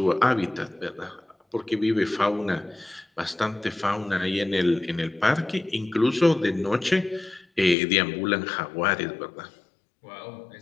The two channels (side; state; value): right; drops out; at 7.8 s